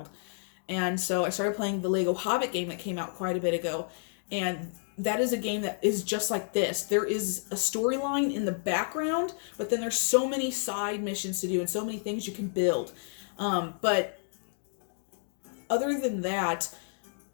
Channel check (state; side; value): silent; right; digital silence